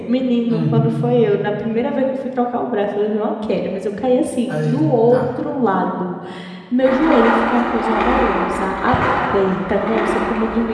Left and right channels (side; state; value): both; identical; correlation 1.00